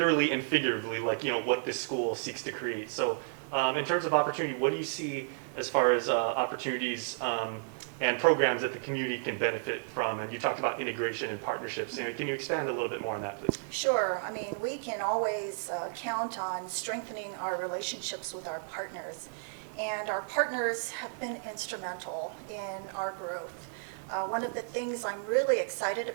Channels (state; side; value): silent; left; digital silence